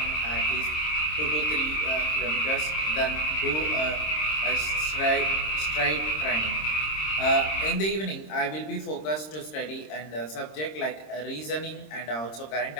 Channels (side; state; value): right; late; 26 ms